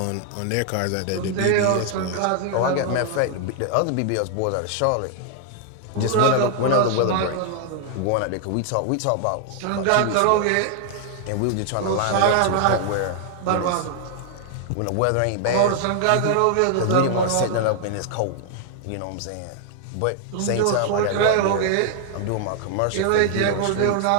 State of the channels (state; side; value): different; both; correlation 0.00